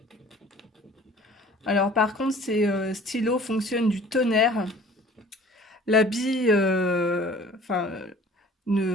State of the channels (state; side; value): normal; both; correlation 0.48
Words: Alors par contre, ces stylos fonctionnent du tonnerre. La bille